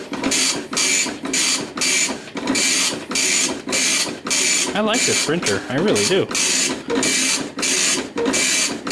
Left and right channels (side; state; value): both; identical; correlation 1.00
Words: I like this printer, I really do.